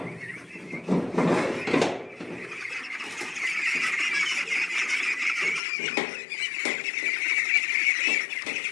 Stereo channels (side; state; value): right; drops out; at 5.6 s